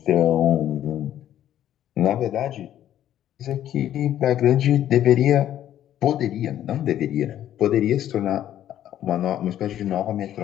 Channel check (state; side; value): quieter; right; 11.6 dB